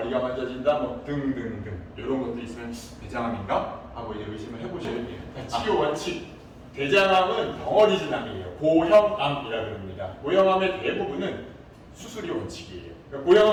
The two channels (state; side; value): identical; both; correlation 1.00